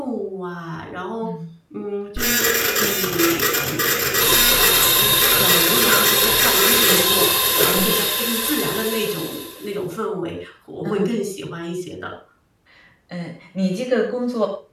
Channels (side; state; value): both; identical; correlation 1.00